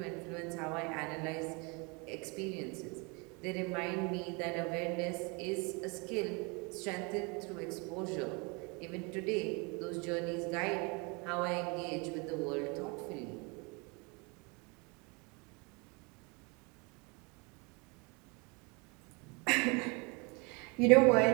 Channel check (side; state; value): left; quieter; 30.2 dB